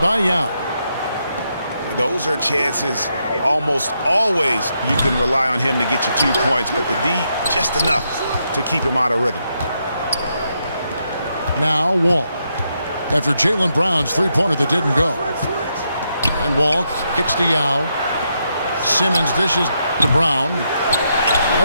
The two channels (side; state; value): both; inverted; correlation -0.81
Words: by Yao. Those are chances almost always you can rely on him to get you 2 points, but the D just enough to keep him out of rhythm. Now Wall. After Jaylen Brown's three-pointer that didn't go. And Wall kicks to Yao. Simmons dishes to Brown.